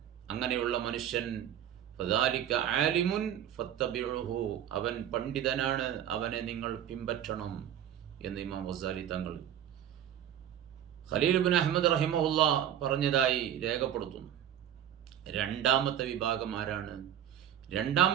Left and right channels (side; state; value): left; quieter; 10.2 dB